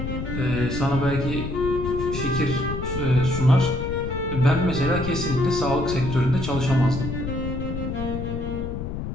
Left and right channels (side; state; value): left; noise; rumble, 5 dB below the sound